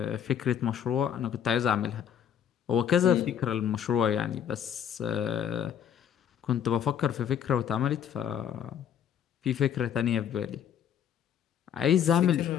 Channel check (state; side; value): quieter; right; 8.9 dB